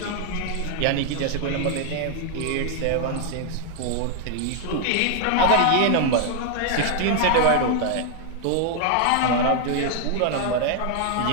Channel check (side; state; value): both; different; correlation 0.00